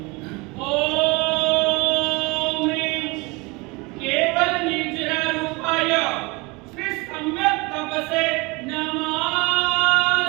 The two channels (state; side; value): quieter; left; 26.1 dB